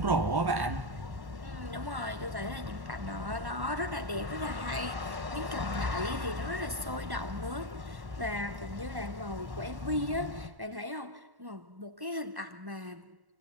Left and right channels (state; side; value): late; left; 1.1 ms